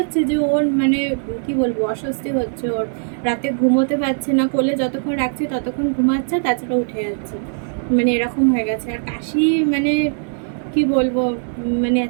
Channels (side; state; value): left; silent; digital silence